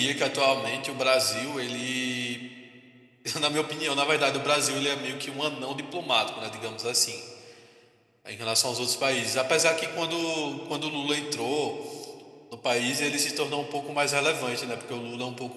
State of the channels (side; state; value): both; identical; correlation 1.00